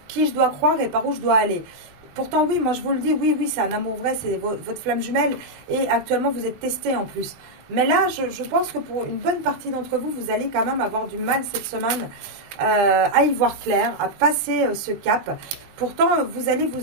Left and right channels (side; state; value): left; late; 20 ms